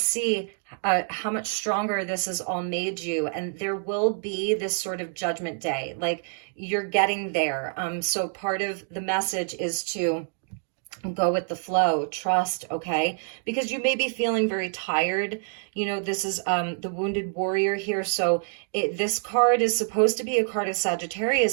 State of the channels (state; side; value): silent; left; 60 dB below the other